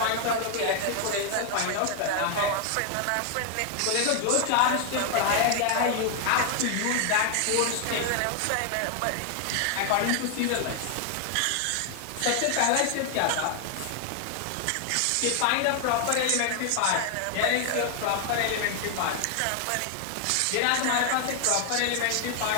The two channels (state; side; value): different; both; correlation 0.00